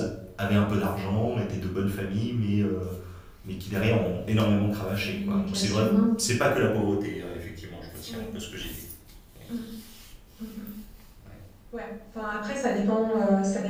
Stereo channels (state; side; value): identical; both; correlation 1.00